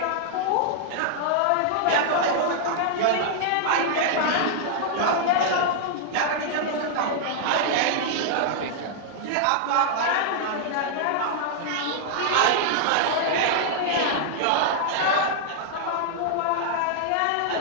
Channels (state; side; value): different; both; correlation -0.01